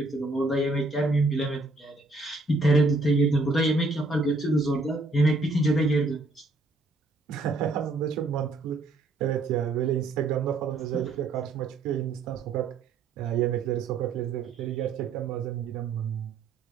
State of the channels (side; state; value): left; quieter; 3.3 dB